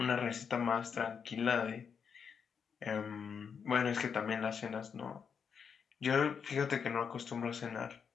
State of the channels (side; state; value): right; quieter; 6.6 dB